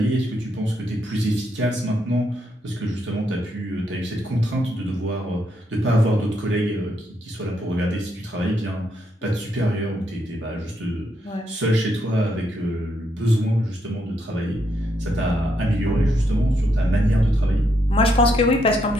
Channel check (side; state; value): both; normal; correlation 0.77